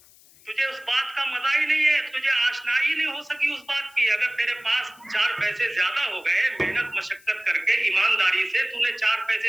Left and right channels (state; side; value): noise; left; hiss, 26 dB below the sound